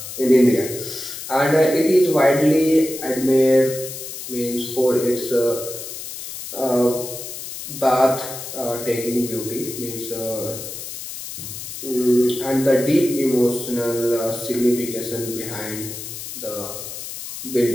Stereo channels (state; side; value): noise; left; hiss, 9 dB below the sound